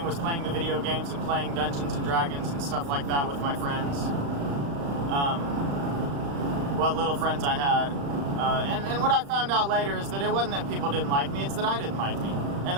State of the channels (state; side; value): late; left; 35 ms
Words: was playing the video games and playing Dungeons and Dragons and stuff like that with my friends. What little friends I had. And what I found out later is that it wasn't that people didn't like me, it's that I didn't like me. And